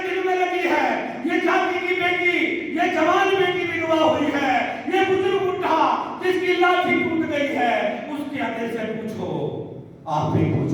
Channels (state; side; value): identical; both; correlation 1.00